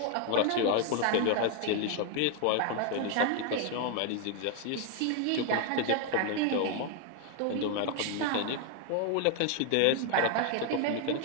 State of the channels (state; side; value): different; both; correlation 0.01